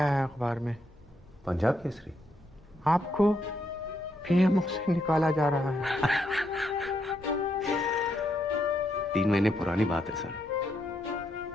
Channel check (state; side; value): normal; both; correlation 0.78